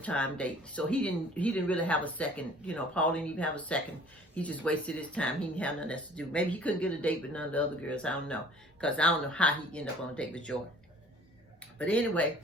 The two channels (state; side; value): normal; both; correlation 0.51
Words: time date. So he didn't really have a second, Paul didn't even have a second. He just wasted his time. He didn't have nothing else to do. Maybe he couldn't get a date with none of the other girls. I don't know. Because I don't know how he ended up on a date with Joy. But anyway,